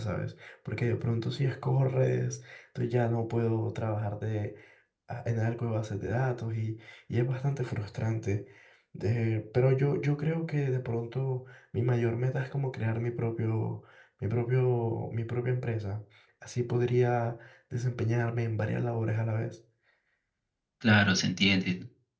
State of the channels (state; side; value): identical; both; correlation 1.00